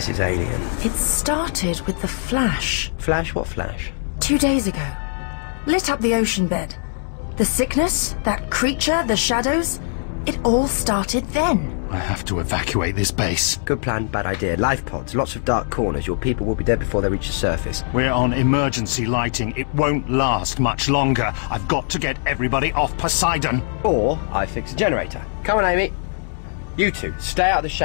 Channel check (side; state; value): right; silent; 64 dB below the other